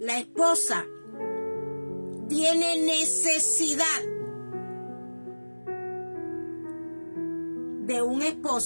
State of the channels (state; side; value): inverted; both; correlation -1.00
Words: esposa tiene necesidad de un